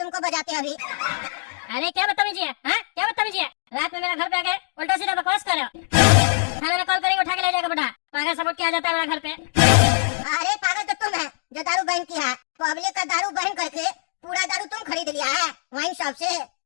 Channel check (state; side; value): silent; right; 63 dB below the other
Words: बजाते अभी। अरे क्या बदतमीजी है, हाँ क्या बदतमीजी है? रात में मेरा घर पे आके उल्टा सीधा बकवास कर रहे हो। थाने में कॉल करेंगे, उठा के ले जाएगा बेटा, पागल सपोर्ट किया जाता है मेरा घर पे। अरे पागल तो तुम है जो दारू बैन किया है, पब्लिक का दारू बैन करके पूरा दारू तुम खरीद लिया है वाइन शॉप से।